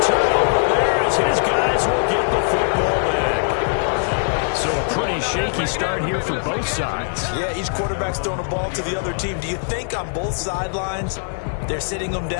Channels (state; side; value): silent; right; 57 dB below the other